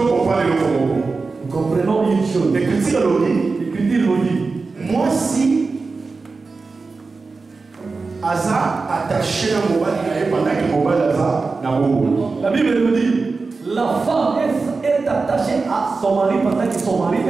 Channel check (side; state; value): left; quieter; 4.2 dB